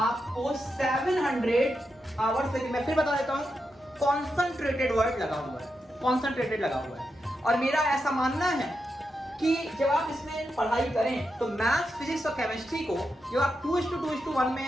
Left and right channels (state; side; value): normal; both; correlation 0.86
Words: 700 आवर्स से, मैं फिर बता देता हूं, कॉन्सेंट्रेटेड वर्ड लगा हुआ है, कॉन्सेंट्रेटेड लगा हुआ है। और मेरा ऐसा मानना है कि जब आप इसमें पढ़ाई करें तो मैथ्स, फिजिक्स और केमिस्ट्री को जब आप 2:2:1 में